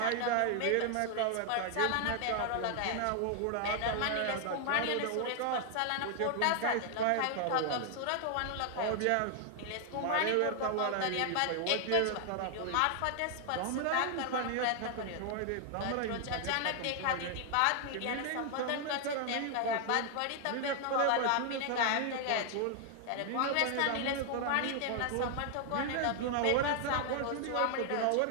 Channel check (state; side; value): different; both; correlation 0.00